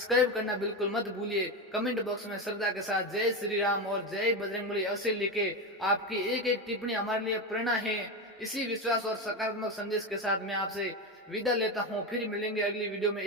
करना बिल्कुल मत भूलिए। कमेंट बॉक्स में श्रद्धा के साथ जय श्री राम और जय बजरंगबली अवश्य लिखे। आपकी एक एक टिप्पणी हमारे लिए प्रेरणा है। इसी विश्वास और सकारात्मक संदेश के साथ मैं आपसे विदा लेता हूँ। फिर मिलेंगे अगली वीडियो में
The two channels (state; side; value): normal; both; correlation 0.15